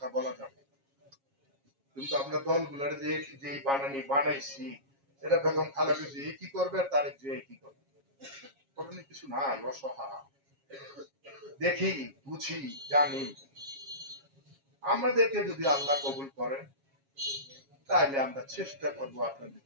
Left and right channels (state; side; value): late; left; 7.3 ms